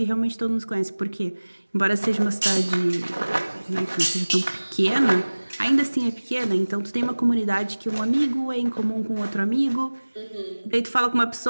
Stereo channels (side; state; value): both; inverted; correlation -1.00